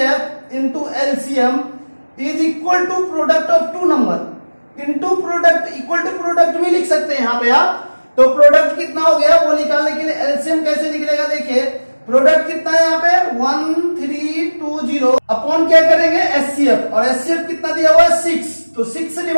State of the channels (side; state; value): both; inverted; correlation -1.00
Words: into LCM is equal to product of two number into product, equal to product भी लिख सकते हैं यहाँ पे आप। तो प्रोडक्ट कितना हो गया वो निकालने के लिए एलसीएम कैसे निकलेगा, देखिए प्रोडक्ट कितना है यहाँ पे 1320 अपॉन क्या करेंगे एचसीएफ, और एचसीएफ कितना दिया हुआ है 6। तो 6 से